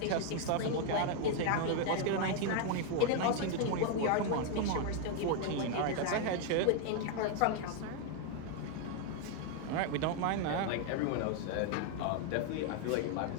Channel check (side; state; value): both; different; correlation 0.00